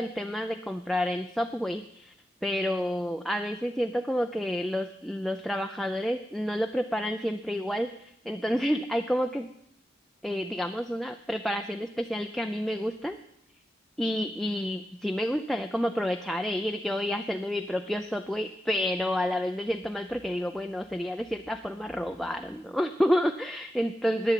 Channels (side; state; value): both; normal; correlation 0.90